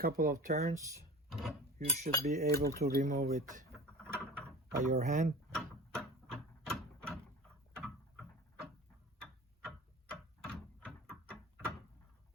of turns, you should be able to remove it by your hand.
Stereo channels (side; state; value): both; normal; correlation 0.37